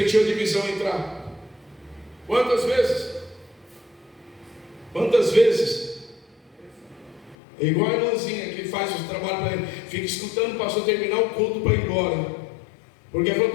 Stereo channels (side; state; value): right; drops out; at 7.4 s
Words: a divisão entrar? Quantas vezes? Quantas vezes? É igual a irmãzinha que faz o trabalho para ele, fica escutando o pastor terminar o culto para ir embora, porque falou,